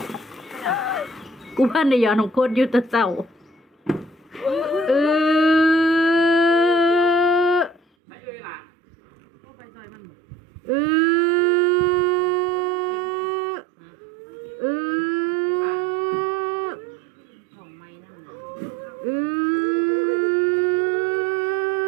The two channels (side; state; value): left; drops out; at 7.8 s